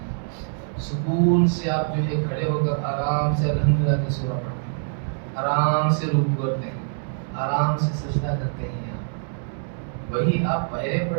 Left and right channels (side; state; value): left; silent; digital silence